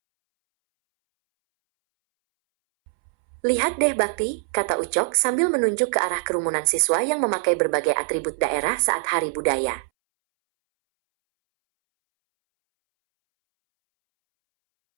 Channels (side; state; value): left; silent; 63 dB below the other